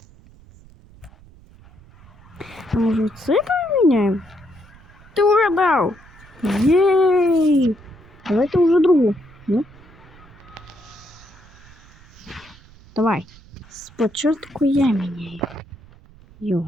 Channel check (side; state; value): right; noise; rumble, 24 dB below the sound